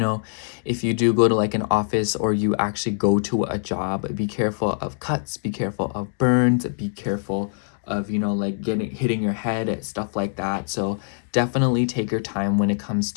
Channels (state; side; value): silent; right; digital silence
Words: if you do go to like an office, or you actually go to a job, be careful of cuts, be careful of burns, be careful of, you know, like hitting your head, stuff like that. So definitely take your time when it comes